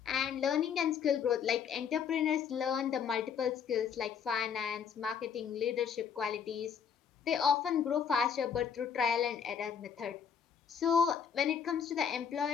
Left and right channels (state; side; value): quieter; right; 7.3 dB